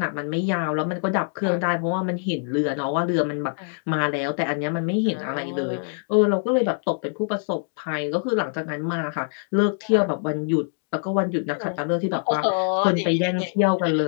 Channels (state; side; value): silent; right; 63 dB below the other